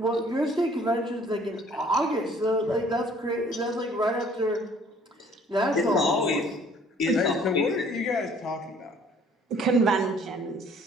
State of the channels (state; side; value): normal; both; correlation 0.57